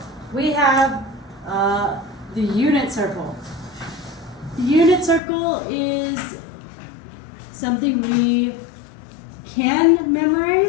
we have the unit circle. The unit circle is something we can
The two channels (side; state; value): right; drops out; at 5.2 s